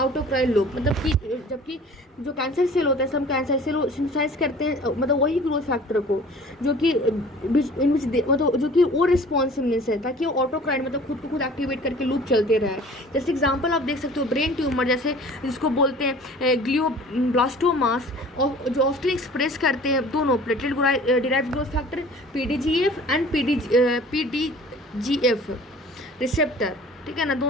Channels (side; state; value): both; normal; correlation 0.47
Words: loop. मतलब कि जबकि जो कैंसर सेल होते हैं सब कैंसर सेल सिंथेसाइज करते हैं मतलब वही ग्रोथ फैक्टर को जो कि मतलब जो कि वो रिस्पॉन्सिवनेस है ताकि वो ऑटोक्राइन मतलब खुद को खुद एक्टिवेट करके लूप चलते रहे। जैसे एग्जाम्पल आप देख सकते हो ब्रेन ट्यूमर, जैसे जिसको बोलते हैं ग्लियोब्लास्टोमास, और जो ऑफ्टन एक्सप्रेस करते हैं दोनों platelet derived growth factor PDGF and PDGF receptor, ठीक है ना,